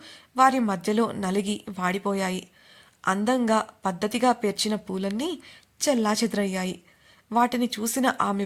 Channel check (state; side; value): identical; both; correlation 1.00